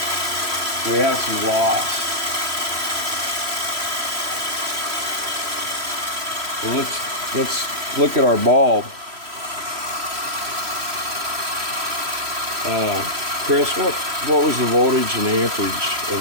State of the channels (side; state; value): left; late; 3.1 ms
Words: We have some loss. So let's look at our bulb. Chris, what was the voltage and amperage of